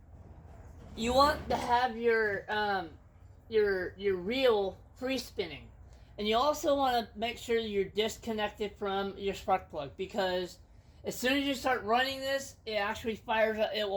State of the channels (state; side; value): identical; both; correlation 1.00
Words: you want to have your reel free spinning, and you also want to make sure you're disconnected from your spark plug, because as soon as you start running this, it actually fires up. It